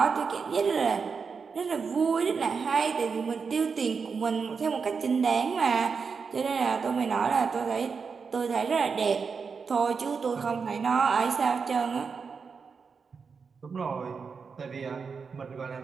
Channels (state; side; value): quieter; left; 5.4 dB